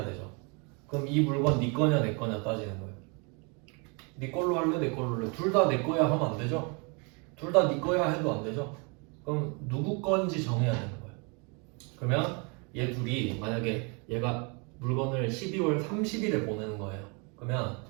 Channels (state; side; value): quieter; left; 33.0 dB